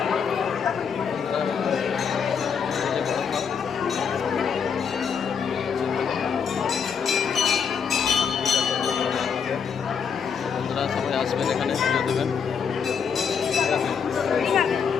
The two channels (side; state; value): right; quieter; 6.7 dB